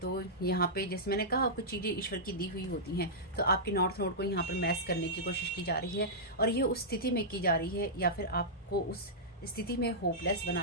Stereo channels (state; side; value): normal; both; correlation -0.13